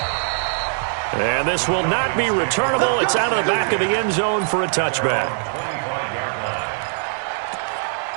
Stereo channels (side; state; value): left; silent; digital silence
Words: And this will not be returnable. It's out of the back of the end zone for a touchback.